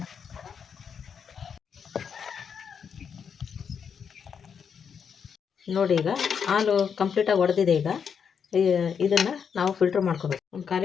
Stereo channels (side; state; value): right; quieter; 6.9 dB